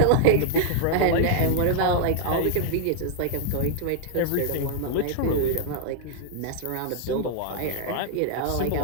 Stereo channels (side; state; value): both; different; correlation -0.01